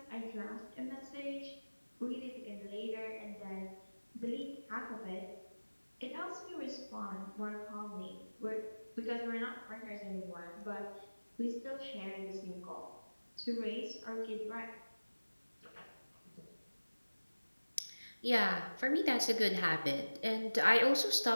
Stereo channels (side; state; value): both; inverted; correlation -1.00